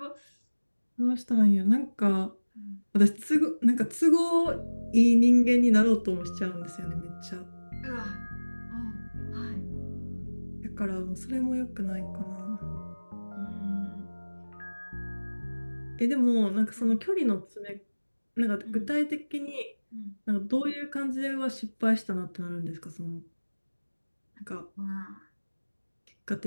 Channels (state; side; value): inverted; both; correlation -1.00